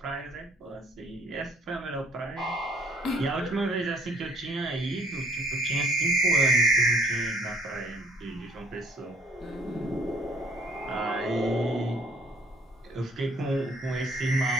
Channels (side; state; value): both; normal; correlation 0.60